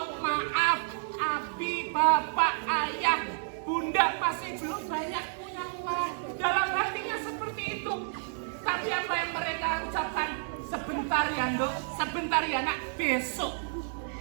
maaf, abi, bapak, ayah, bunda masih belum banyak punya uang. Dalam hatinya seperti itu. Tapi apa yang mereka ucapkan? Sebentar ya Dok, sebentar ya nak, besok.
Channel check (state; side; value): silent; left; 58 dB below the other